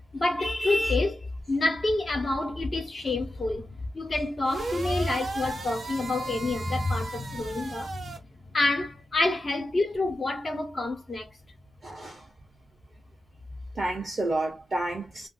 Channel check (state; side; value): normal; both; correlation 0.90